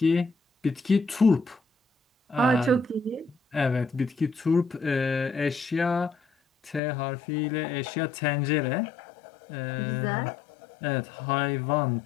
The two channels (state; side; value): drops out; right; at 6.8 s